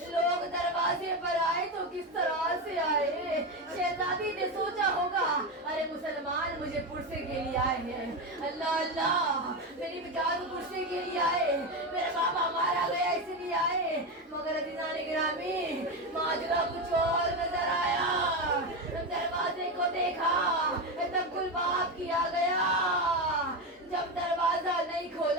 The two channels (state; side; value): normal; both; correlation 0.14